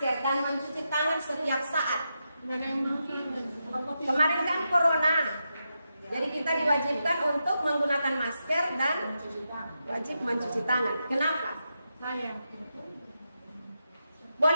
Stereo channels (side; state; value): both; inverted; correlation -0.87